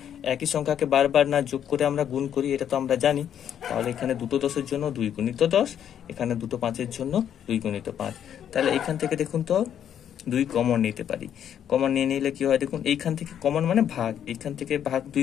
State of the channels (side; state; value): right; quieter; 9.5 dB